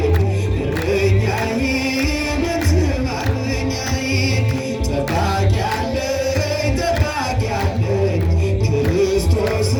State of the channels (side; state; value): both; identical; correlation 1.00